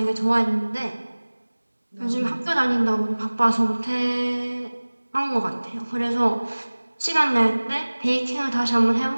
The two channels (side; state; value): both; inverted; correlation -1.00